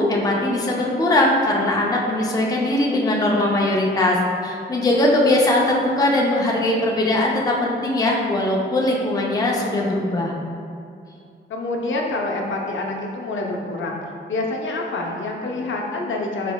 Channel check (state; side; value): normal; both; correlation 0.44